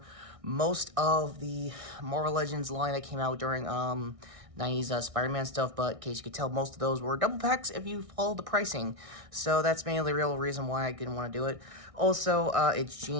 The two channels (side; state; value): left; late; 1.6 ms